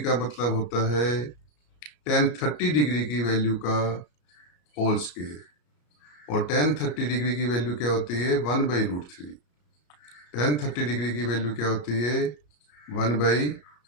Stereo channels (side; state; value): right; late; 34 ms